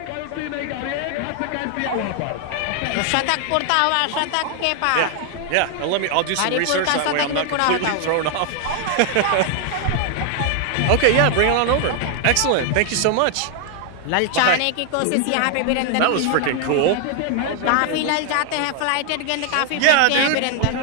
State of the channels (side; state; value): both; different; correlation 0.00